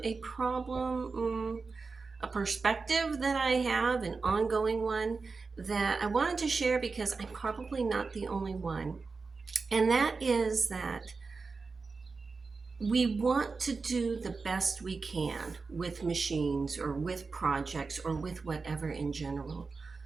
a problem, a perspective that I have, an ongoing one that I wanted to share because I'm probably not the only one. And that is that we want to do the best we can with machines or with projects or with whatever in general.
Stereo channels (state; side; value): quieter; left; 4.4 dB